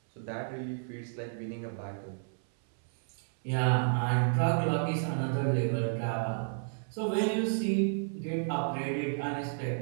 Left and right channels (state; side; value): silent; left; 57 dB below the other